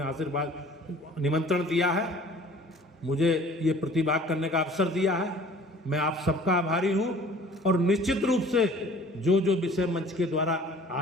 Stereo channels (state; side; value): normal; both; correlation 0.49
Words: आशीर्वाद निमंत्रण दिया है, मुझे ये प्रतिभाग करने का अवसर दिया है, मैं आप सबका आभारी हूं। और निश्चित रूप से जो जो विषय मंच के द्वारा